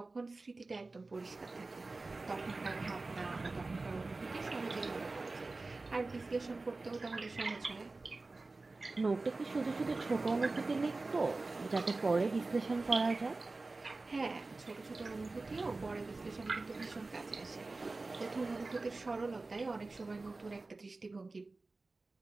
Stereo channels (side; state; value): left; quieter; 3.4 dB